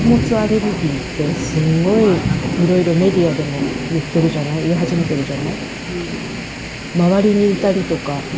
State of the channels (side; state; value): both; identical; correlation 1.00